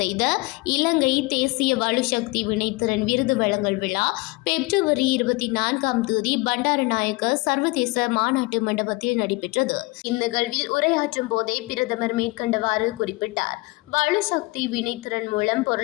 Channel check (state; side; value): quieter; right; 24.1 dB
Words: இலங்கை தேசிய வலுசக்தி வினைத்திறன் விருது வழங்கல் விழா பிப்ரவரி 24 பண்டாரநாயக்க சர்வதேச மாநாட்டு மண்டபத்தில் நடைபெற்றது. இந்நிகழ்வில் உரையாற்றும் போதே பிரதமர் மேற்கண்டவாறு குறிப்பிட்டார். வலுசக்தி வினைத்திறன் மூலம்